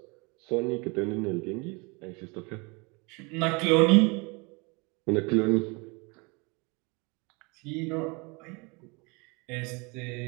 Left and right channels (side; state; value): left; quieter; 29.1 dB